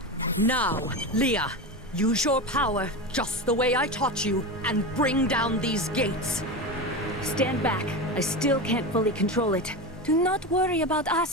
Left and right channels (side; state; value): both; normal; correlation 0.21